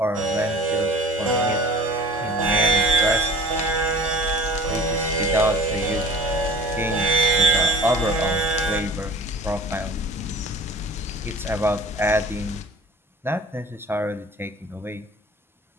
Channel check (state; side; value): normal; both; correlation 0.43